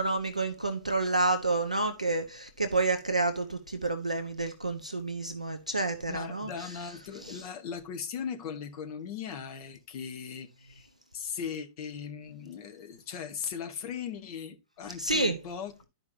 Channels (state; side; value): inverted; both; correlation -0.55